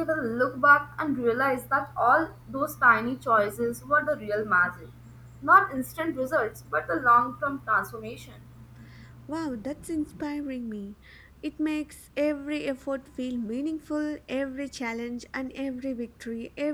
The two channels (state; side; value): identical; both; correlation 1.00